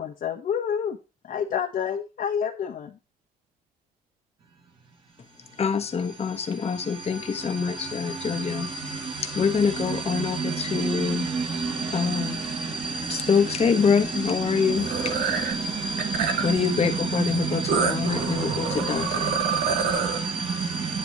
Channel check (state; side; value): normal; both; correlation 0.54